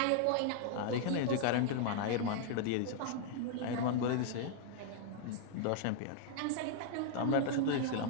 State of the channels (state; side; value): different; both; correlation -0.01